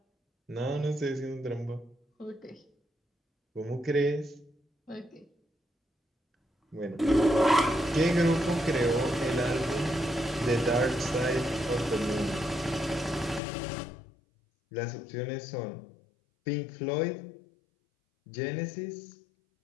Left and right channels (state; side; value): drops out; right; at 13.4 s